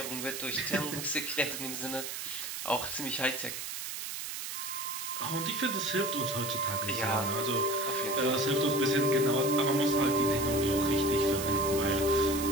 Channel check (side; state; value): right; noise; hiss, 6 dB below the sound